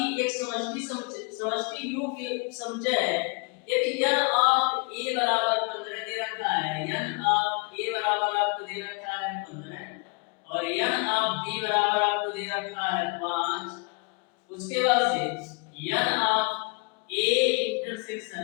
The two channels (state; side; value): quieter; right; 32.1 dB